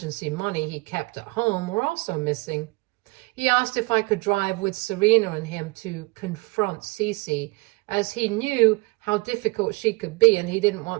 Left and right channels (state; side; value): quieter; left; 26.6 dB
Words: money he kept at home were also missing. He asked if I could drive with Serena and him to confront Cece, as he knew how difficult she could be and he didn't